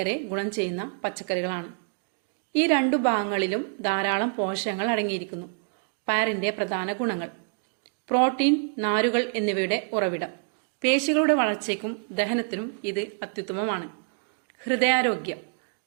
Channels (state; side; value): silent; left; 56 dB below the other